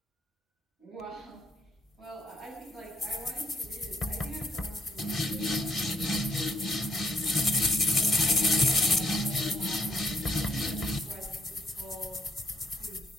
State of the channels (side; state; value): both; normal; correlation 0.71